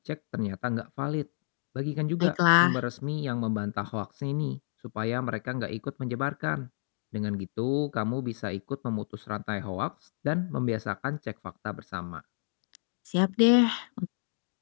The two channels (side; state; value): right; silent; digital silence